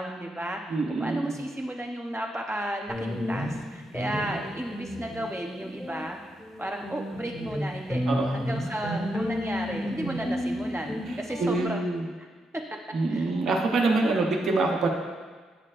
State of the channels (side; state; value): both; normal; correlation 0.82